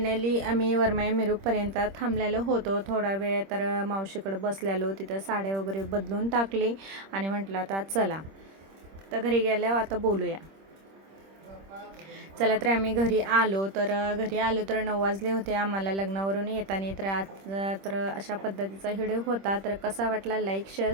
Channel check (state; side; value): late; left; 26 ms